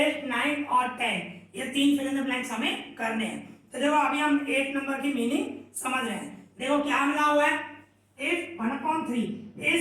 9 और 10 ये 3 फिल इन द ब्लैंक्स हमें करने हैं। तो देखो अभी हम 8 नंबर की मीनिंग समझ रहे हैं। देखो क्या मिला हुआ है, if 1/3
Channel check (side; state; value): both; identical; correlation 1.00